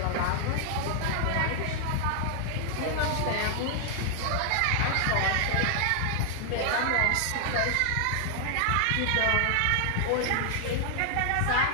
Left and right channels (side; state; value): both; different; correlation 0.00